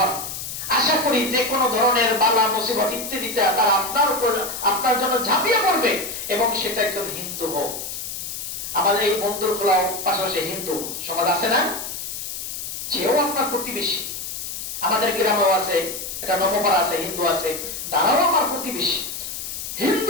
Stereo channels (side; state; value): left; noise; hiss, 7 dB below the sound